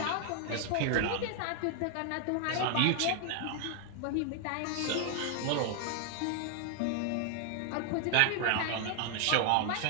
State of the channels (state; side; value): different; both; correlation 0.00